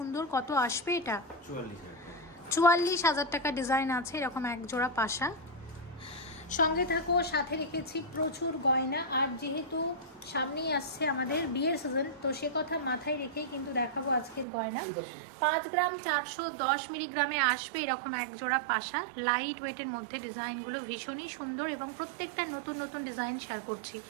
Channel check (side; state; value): left; drops out; at 14.5 s